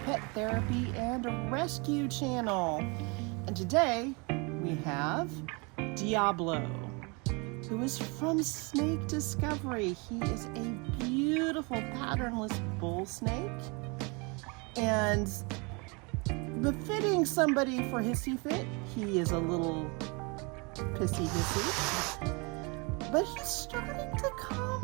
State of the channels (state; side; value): quieter; left; 30.1 dB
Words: Pet Therapy and Rescue Channel. And today we have Diablo, who is from Snake Discovery. He is a beautiful patternless bull snake, and befitting somebody for Hissy Fit, he is a little pissy hissy, but he's starting to